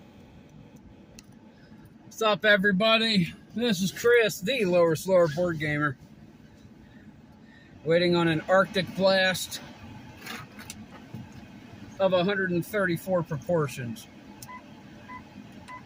What's up, everybody? This is Chris, the Lower Slower Board Gamer, waiting on an Arctic blast of 134 proportions.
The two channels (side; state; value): both; identical; correlation 1.00